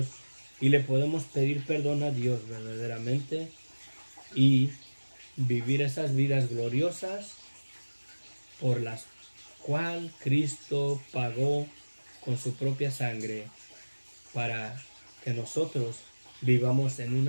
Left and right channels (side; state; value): both; inverted; correlation -1.00